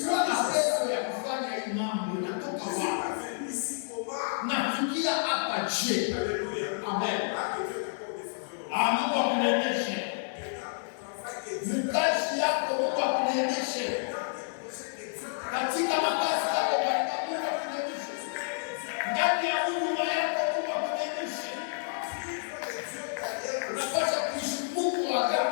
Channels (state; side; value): silent; right; 58 dB below the other